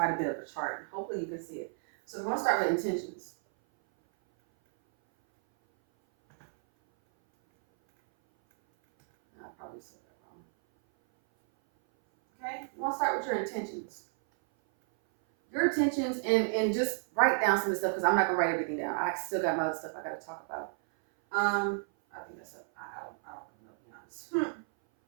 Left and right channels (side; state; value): left; silent; 57 dB below the other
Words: a bit of a chart. Hopefully you can see it. So we're going to start with intentions. I probably said that wrong. Okay, you want to start with your intentions. Your intentions, and just write down some of the stuff, because I'm not going to write everything down. I still got my other stuff I got to talk about. I think that's up. I don't know, to be honest.